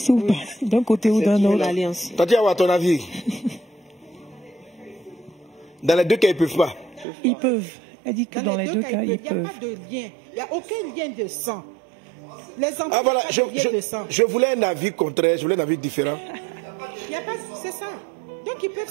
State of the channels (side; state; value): left; drops out; at 7.1 s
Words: ou d'un côté ou d'un autre. Tatiana, à ton avis? Dans les deux cas, ils ne peuvent pas. Ils peuvent. Elle dit que dans les deux cas, ils peuvent. Il n'y a pas de lien. Il n'y a aucun lien de sang. Les enfants voilà, n'ont pas de lien de sang. Je voulais un avis contraire, je voulais un avis différent. Il n'y a pas, c'est ça. Donc ils peuvent